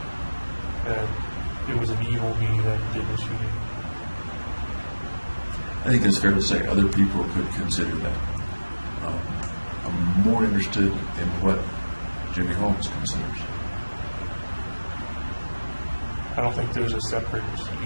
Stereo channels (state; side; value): inverted; both; correlation -1.00